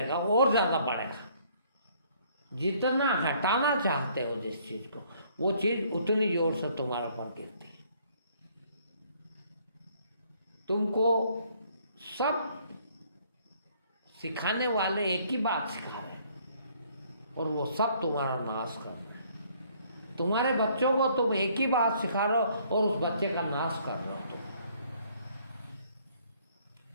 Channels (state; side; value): inverted; both; correlation -0.63